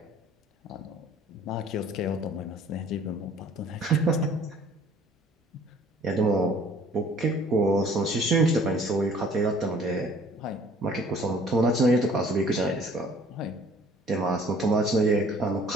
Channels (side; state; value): both; normal; correlation 0.54